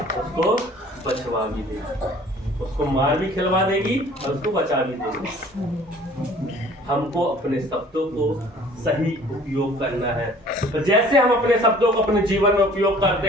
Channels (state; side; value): normal; both; correlation 0.51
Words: उसको बचवा भी दे, उसको मार भी खिलवा देगी और उसको बचा भी देगी। हमको अपने शब्दों को सही उपयोग करना है। तो जैसे हम अपने शब्दों को अपने जीवन में उपयोग